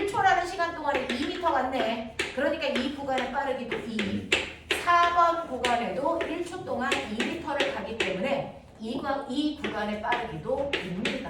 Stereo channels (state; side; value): identical; both; correlation 1.00